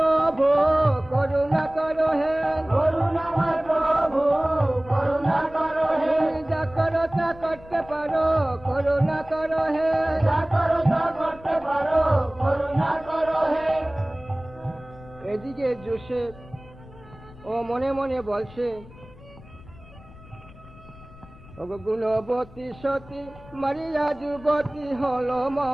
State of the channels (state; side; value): noise; left; rumble, 21 dB below the sound